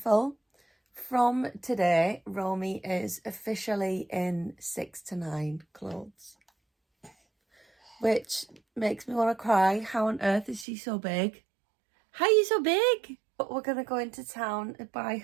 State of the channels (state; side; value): drops out; left; at 10.7 s